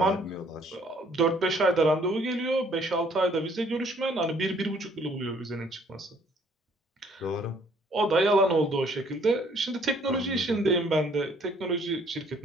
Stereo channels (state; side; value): normal; both; correlation 0.62